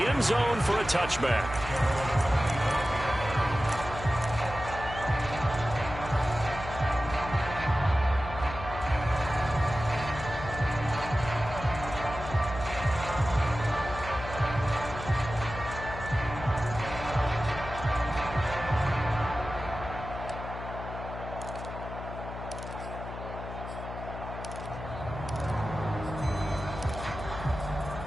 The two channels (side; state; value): left; noise; hum, 9 dB below the sound